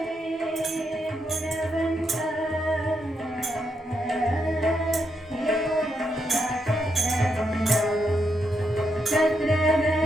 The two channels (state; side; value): normal; both; correlation 0.81